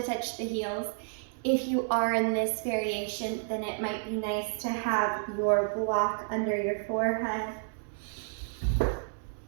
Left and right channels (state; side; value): silent; left; digital silence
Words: touch the heels. If you are in this variation, then it might be nice to have your block under your forehead.